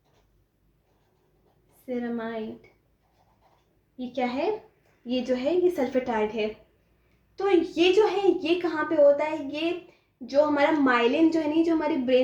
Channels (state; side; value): identical; both; correlation 1.00